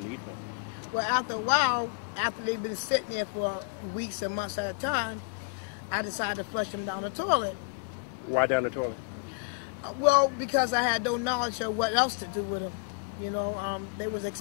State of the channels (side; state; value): right; quieter; 35.2 dB